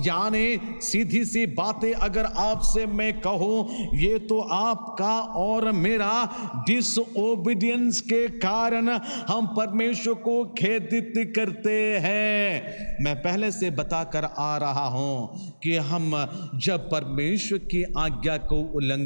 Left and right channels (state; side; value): inverted; both; correlation -1.00